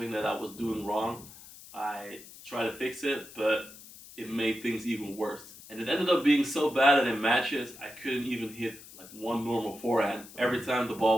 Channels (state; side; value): noise; left; hiss, 18 dB below the sound